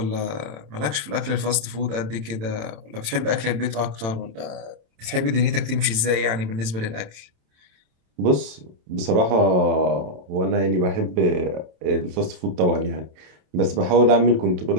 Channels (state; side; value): late; left; 27 ms